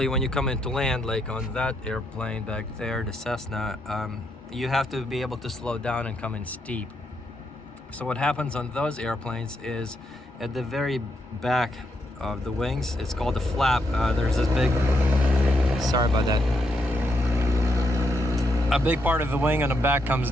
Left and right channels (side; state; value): both; normal; correlation 0.79